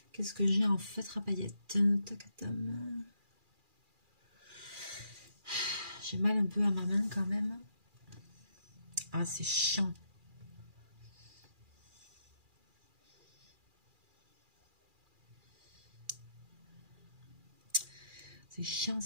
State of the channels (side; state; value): left; late; 2.4 ms